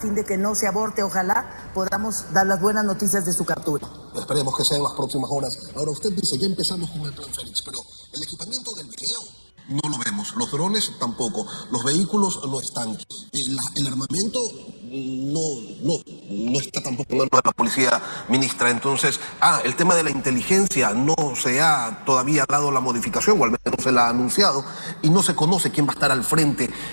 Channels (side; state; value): both; inverted; correlation -1.00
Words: de que no se aborte, ojalá podamos dar las buenas noticias de su captura. Esperemos que sea en las próximas horas. Ahora usted dice, ya empezamos con el Plan Fénix, pero el equipamiento del video no lo vemos, los drones tampoco, los vehículos no están, el armamento no está tampoco en manos de la policía, ministra. Entonces, el tema de la inteligencia no se ha todavía dado la modificación, o al menos se la ha anunciado, y no se conoce quién va a estar al frente